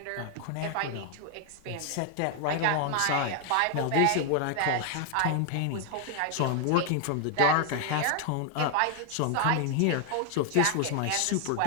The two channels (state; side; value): different; both; correlation 0.00